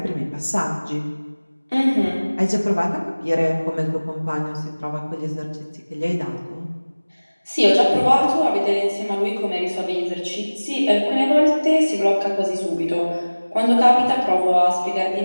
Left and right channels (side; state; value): both; inverted; correlation -1.00